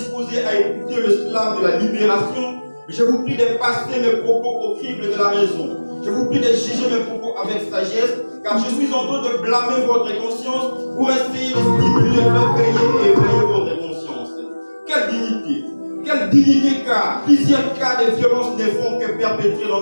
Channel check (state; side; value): inverted; both; correlation -1.00